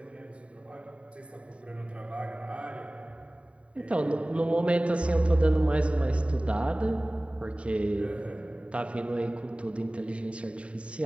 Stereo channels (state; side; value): late; left; 0.062 ms